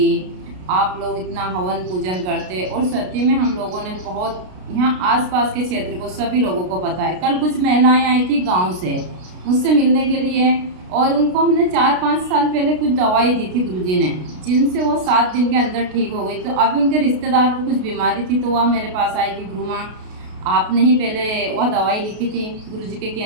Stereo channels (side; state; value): left; late; 33 ms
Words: आप लोग इतना हवन पूजन करते, और सत्य में हम लोगों ने बहुत यहाँ आसपास के क्षेत्र को सभी लोगों को पता है। कल कुछ महिलाएं आई थी गांव से मुझसे मिलने के लिए, और उनको हमने 4-5 साल पहले कुछ दवाई दी थी गुरुजी ने, जिनसे वो 7 दिन के अंदर ठीक हो गई। तो अभी उनके रिश्तेदार को कुछ बीमारी थी, तो वह मेरे पास आई कि गुरु माँ आपने ही पहले वह दवाई लिखी थी गुरुजी के